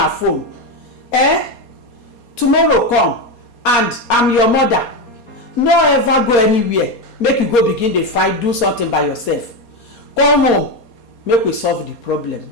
phone. Tomorrow come and I'm your mother. No ever go anywhere. Make you go begin the fight, do something by yourself. Come home. Make we solve the problem.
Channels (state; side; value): late; right; 4.2 ms